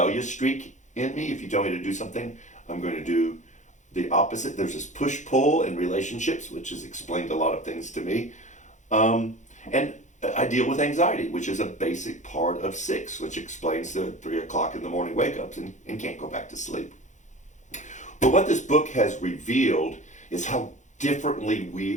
streak in me. If you tell me to do something, I'm going to do the opposite. There's this push-pull in relationships, which has explained a lot of things to me. And I deal with anxiety, which is a basic part of 6, which explains the 3 o'clock in the morning wake-ups and can't go back to sleep. But what this book has revealed is how differently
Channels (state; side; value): late; right; 0.35 ms